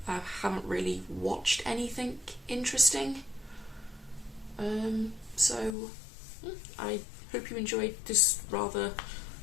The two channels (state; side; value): drops out; right; at 5.8 s